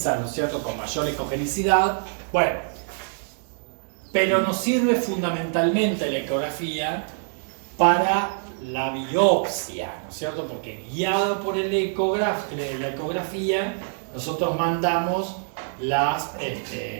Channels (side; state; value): left; silent; digital silence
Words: ¿no es cierto?, con mayor ecogenicidad, bueno, pero nos sirve fundamentalmente la ecografía para la biopsia, ¿no es cierto?, porque guiado por la ecografía, nosotros mandamos el